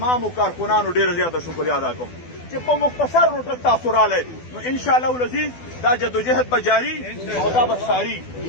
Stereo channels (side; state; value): right; late; 12 ms